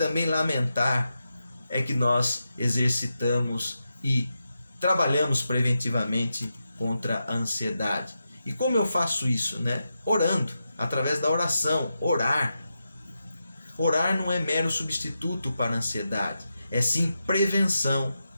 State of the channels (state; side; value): inverted; both; correlation -0.88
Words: lamentar, é que nós exercitamos e trabalhamos preventivamente contra a ansiedade. E como eu faço isso? Orando, através da oração. Orar não é mero substituto para a ansiedade, é sim prevenção